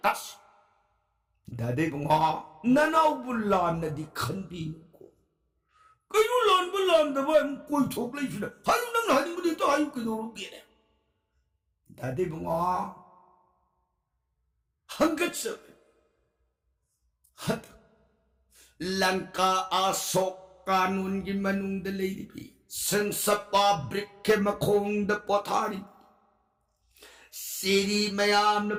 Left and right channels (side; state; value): both; identical; correlation 1.00